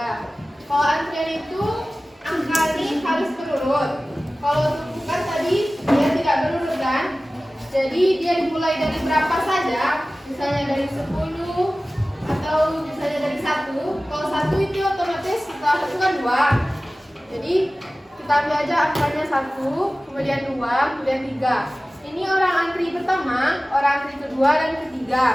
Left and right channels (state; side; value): normal; both; correlation 0.97